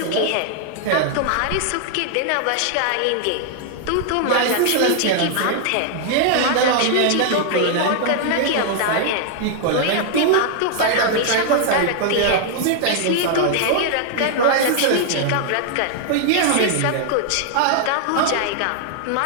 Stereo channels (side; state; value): both; different; correlation 0.00